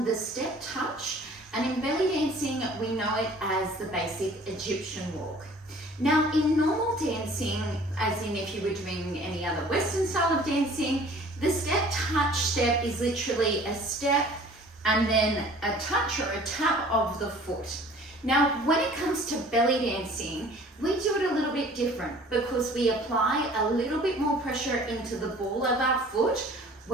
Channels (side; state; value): both; normal; correlation 0.50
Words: the step touch, and in belly dancing we know it as the basic Egyptian walk. Now in normal dancing, as in if you were doing any other Western style of dancing, the step touch step is literally a step and then a touch or a tap of the foot. Now when it comes to belly dancing, we do it a little bit different because we apply a little bit more pressure into the ball of our foot